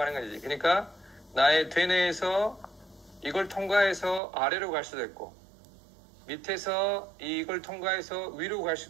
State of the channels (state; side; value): drops out; left; at 4.2 s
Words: 하는 거지. 그러니까 나의 되뇌에서 이걸 통과해서 아래로 갈 수도 있고, 밑에서 이걸 통과해서 위로 갈